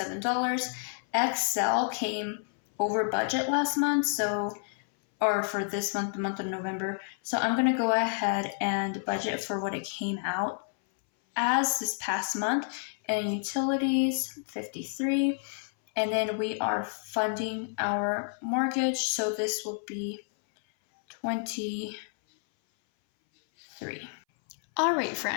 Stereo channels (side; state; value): right; silent; 58 dB below the other